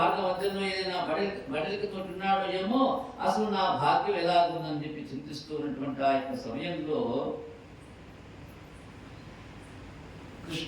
మధ్యలో ఏదైనా బడలికి తోటున్నాడో ఏమో, అసలు నా భాగ్యం ఎలాగుందని చెప్పి చింతిస్తూ ఉన్నటువంటి ఆ యొక్క సమయంలో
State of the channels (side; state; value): both; identical; correlation 1.00